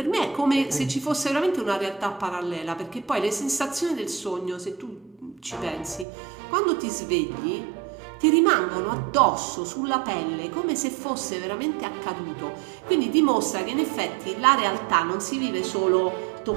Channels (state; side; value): drops out; left; at 6.1 s